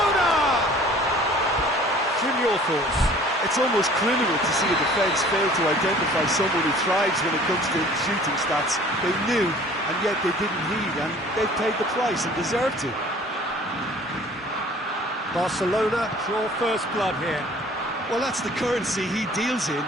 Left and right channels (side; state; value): both; normal; correlation 0.50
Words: Jim, your thoughts? It's almost criminal to see a defence fail to identify someone who thrives when it comes to shooting stats. They knew, and yet they didn't heed, and they've paid the price and deserve to. Barcelona draw first blood here. Well, that's the currency he deals in,